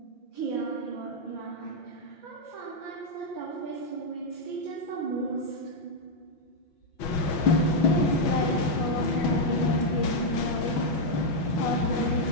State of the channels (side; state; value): right; late; 5.8 ms